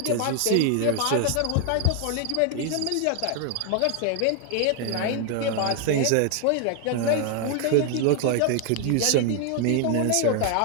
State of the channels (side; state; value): both; different; correlation 0.00